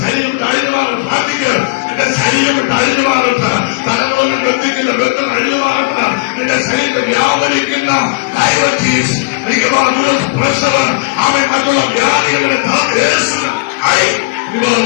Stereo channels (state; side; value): quieter; right; 25.1 dB